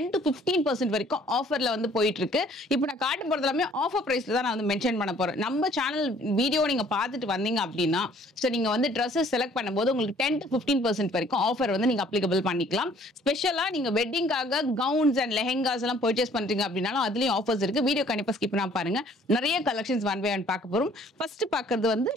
to 15% வரைக்கும் ஆஃபர்ல வந்து போயிட்டு இருக்கு. இப்போ நான் காட்ட போறது எல்லாமே ஆஃபர் பிரைஸ்ல தான் நான் வந்து மென்ஷன் பண்ண போறேன். நம்ம சேனல் வீடியோ நீங்க பார்த்துட்டு வந்தீங்க அப்படின்னா சோ நீங்க வந்து Dresses செலக்ட் பண்ணும்போது உங்களுக்கு 10 to 15% வரைக்கும் ஆஃபர் வந்து நீங்க அப்ளிகபிள் பண்ணிக்கலாம். ஸ்பெஷலா நீங்க வெட்டிங்காக கவுன்ஸ் அண்ட் லெஹெங்காஸ் எல்லாம் பர்ச்சேஸ் பண்றீங்க அப்படினாலும் அதுலயும் ஆஃபர்ஸ் இருக்கு. வீடியோ கண்டிப்பா ஸ்கிப் பண்ணாம பாருங்க. நிறைய கலெக்ஷன்ஸ் ஒன் பை ஒன் பார்க்க போறோம். ஃபர்ஸ்ட் பார்க்கிறது வந்து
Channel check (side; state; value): both; normal; correlation 0.58